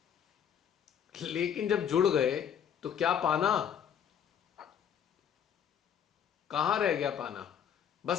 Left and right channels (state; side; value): quieter; right; 8.5 dB